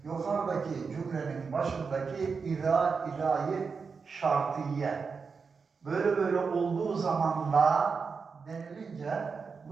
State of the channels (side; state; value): left; quieter; 5.2 dB